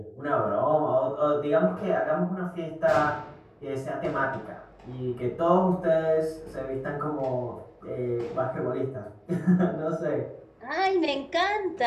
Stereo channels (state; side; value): identical; both; correlation 1.00